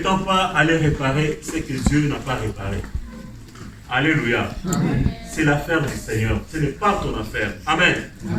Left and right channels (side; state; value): both; identical; correlation 1.00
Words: pas aller réparer ce que Dieu n'a pas réparé. Alléluia. C'est l'affaire du Seigneur. Ce n'est pas ton affaire. Amen.